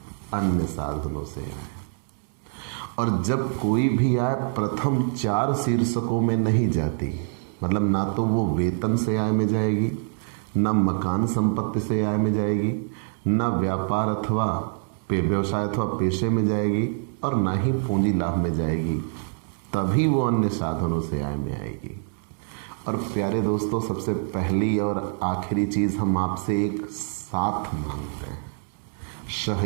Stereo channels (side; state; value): left; silent; 59 dB below the other